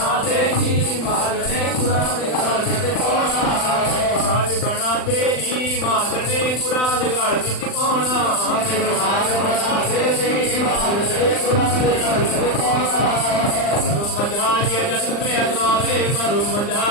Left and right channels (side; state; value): right; late; 39 ms